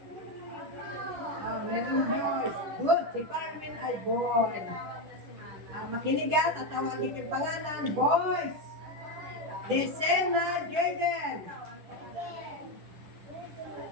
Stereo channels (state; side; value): late; left; 10 ms